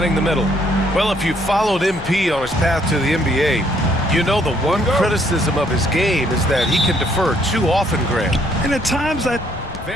the middle. Well, if you followed MP on his path to the NBA, you know the one criticism of his game is that he can defer too often, Grant. And at times that...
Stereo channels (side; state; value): left; noise; rumble, 16 dB below the sound